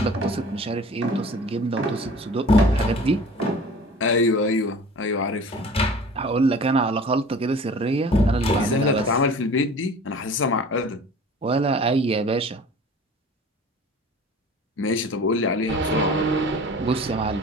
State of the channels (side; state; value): both; normal; correlation 0.43